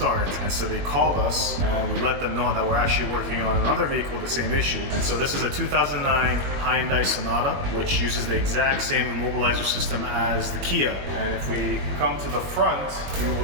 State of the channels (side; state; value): left; late; 21 ms